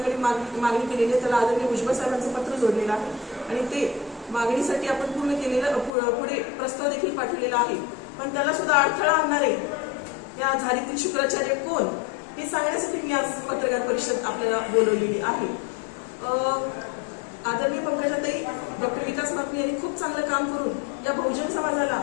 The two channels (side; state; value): right; drops out; at 5.9 s